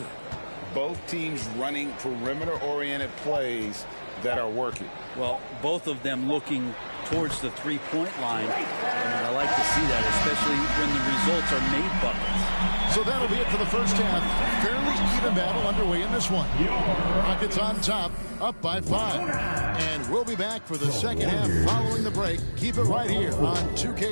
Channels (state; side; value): inverted; both; correlation -1.00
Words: Both teams running perimeter-oriented plays that are working. Well, both of them looking towards the three-point line, and I like to see that, especially when the results are made buckets. So that'll be it for the first half. Fairly even battle underway in this one. Rockets on top, up by 5. And we'll be back for the second half following the break. Keep it right here on